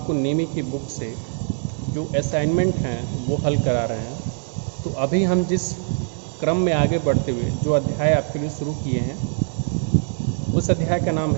नेमी की बुक से जो असाइनमेंट हैं वो हल करा रहे हैं। तो अभी हम जिस क्रम में आगे बढ़ते हुए जो अध्याय आपके लिए शुरू किए हैं उस अध्याय का नाम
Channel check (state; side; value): silent; left; 64 dB below the other